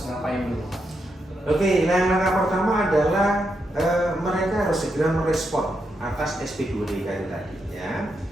ngapain dulu? Oke, langkah pertama adalah mereka harus segera merespon atas SP2DK tadi ya.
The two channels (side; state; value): both; normal; correlation 0.83